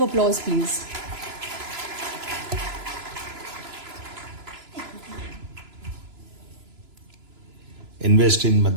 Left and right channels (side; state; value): left; late; 3.0 ms